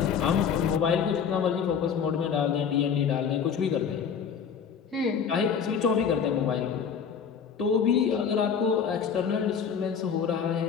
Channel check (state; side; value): quieter; right; 7.0 dB